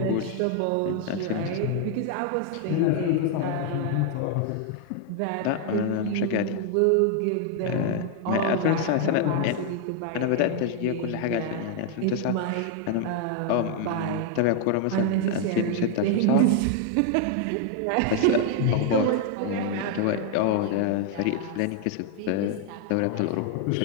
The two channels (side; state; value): both; different; correlation 0.00